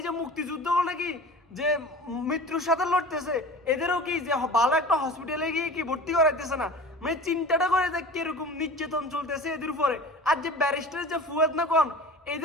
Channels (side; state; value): both; normal; correlation 0.38